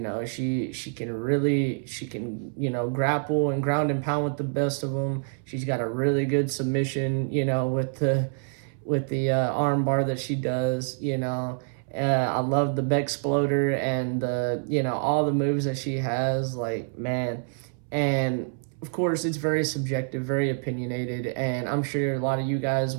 she can, you know, grapple and ground and pound with the best of them. She's got a really good submission, you know, with the arm bar that she does, you know. I love the Bexploder and the, you know, all the moves that she has, like, man. And of course, it's very subjective, very opinionated, and I'm sure a lot of you guys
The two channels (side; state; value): left; silent; 60 dB below the other